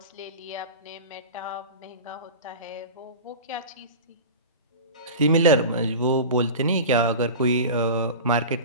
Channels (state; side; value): inverted; both; correlation -0.31